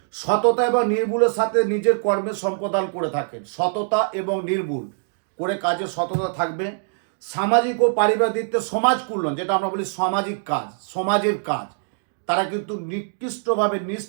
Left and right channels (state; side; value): silent; left; digital silence